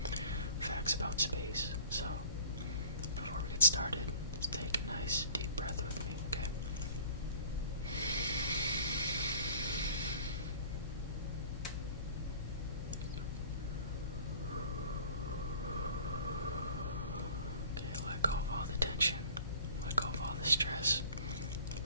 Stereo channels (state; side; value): inverted; both; correlation -0.47